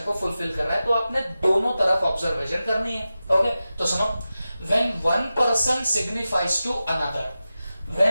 को फुलफिल कर रहा है। तो आपने दोनों तरफ ऑब्जर्वेशन करनी है। ओके, तो सुनो, when one person signifies to another,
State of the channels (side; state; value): both; inverted; correlation -0.94